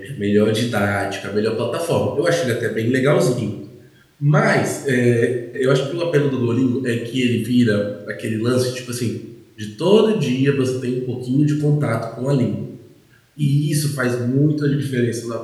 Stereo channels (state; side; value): identical; both; correlation 1.00